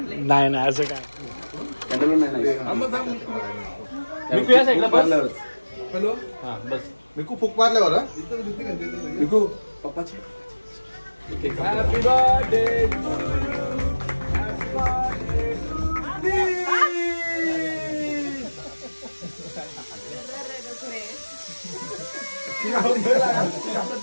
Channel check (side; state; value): both; inverted; correlation -1.00